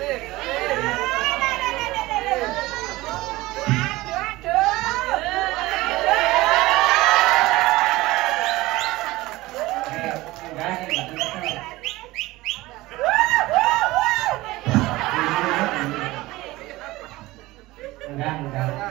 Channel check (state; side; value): quieter; left; 19.2 dB